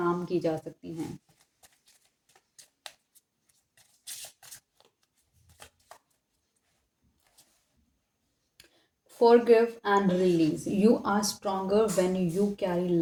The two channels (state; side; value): identical; both; correlation 1.00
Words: की जा सकती हैं। Forgive and release. You are stronger when you carry